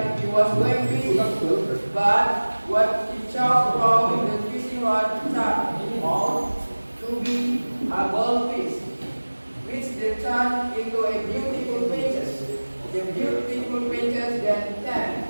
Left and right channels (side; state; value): both; inverted; correlation -1.00